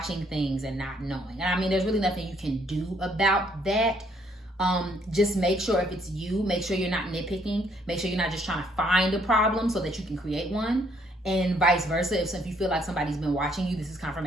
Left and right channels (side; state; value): both; normal; correlation 0.68